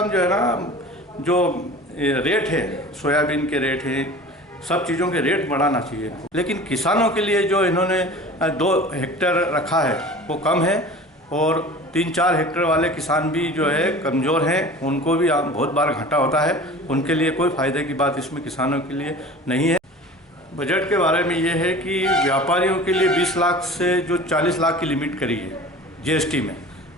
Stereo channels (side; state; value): both; normal; correlation 0.40